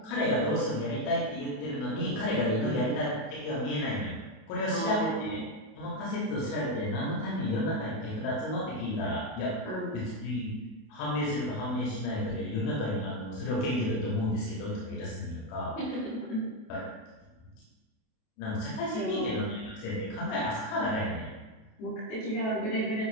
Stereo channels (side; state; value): right; late; 28 ms